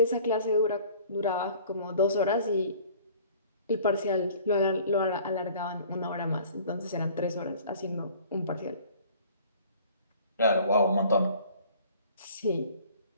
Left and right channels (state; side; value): inverted; both; correlation -0.50